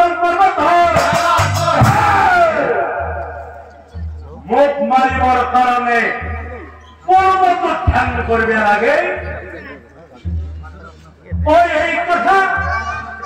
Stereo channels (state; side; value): identical; both; correlation 1.00